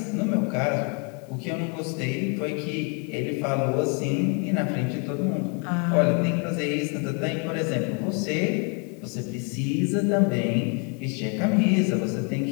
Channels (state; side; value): quieter; right; 34.3 dB